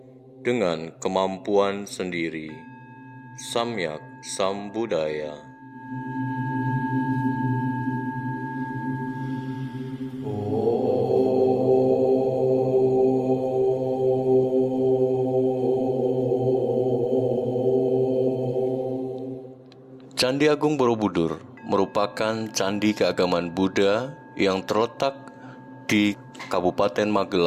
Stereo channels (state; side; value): identical; both; correlation 1.00